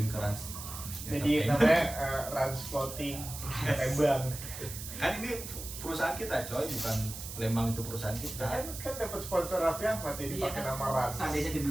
ke Rans Jadi Entertainment. namanya Rans Floating Lembang. Kan ini perusahaan kita coy, bukan Lembang itu perusahaan kita. Kan dapat sponsor Raffi Ahmad jadi Iya pakai kan, nama Rans. seandainya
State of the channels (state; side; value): noise; right; hiss, 10 dB below the sound